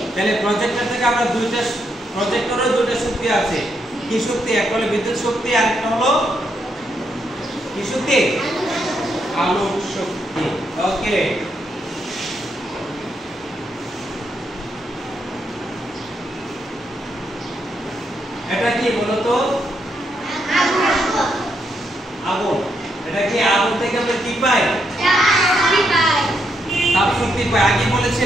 তাহলে প্রজেক্টর থেকে আমরা প্রজেক্টরেও দুইটা শক্তি আছে। কি শক্তি? একটা হলো বিদ্যুৎ শক্তি, আর একটা হলো কি শক্তি? আলোক শক্তি। ওকে, এটা কি বলো তো? আগুন। এটা কি আগুন থেকে আমরা কি পাই? তাপ শক্তি পাই। আগে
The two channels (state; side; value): normal; both; correlation 0.78